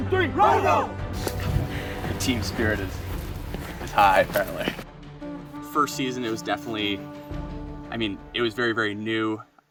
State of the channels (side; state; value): both; identical; correlation 1.00